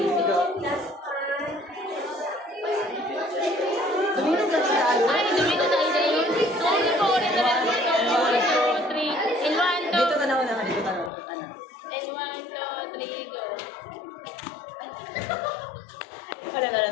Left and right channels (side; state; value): right; drops out; at 11.1 s